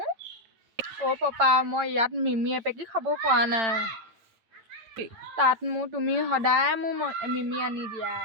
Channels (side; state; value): left; late; 9.0 ms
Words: পাপা মই ইয়াত মিমি এপেকি খাব পৰা নাই তাত তুমি সদায় মোৰ মিমি আনি দিয়া